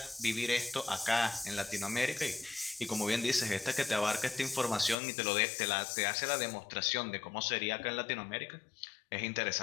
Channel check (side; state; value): right; drops out; at 5.0 s